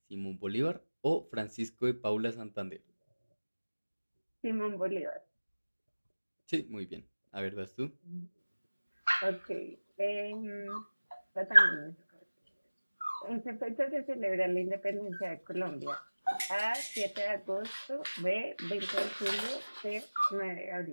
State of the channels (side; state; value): both; inverted; correlation -1.00